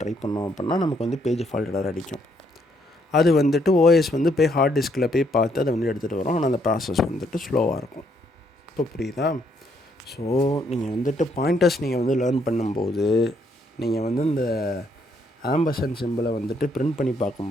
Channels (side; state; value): both; normal; correlation 0.71